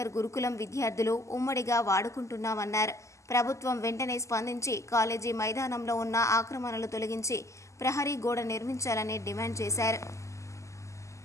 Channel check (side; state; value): right; late; 0.15 ms